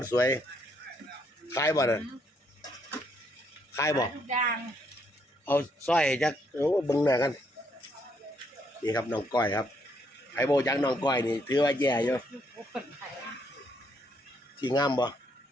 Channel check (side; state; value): both; normal; correlation 0.73